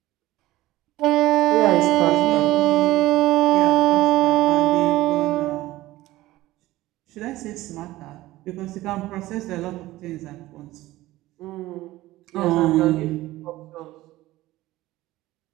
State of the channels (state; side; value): quieter; left; 17.0 dB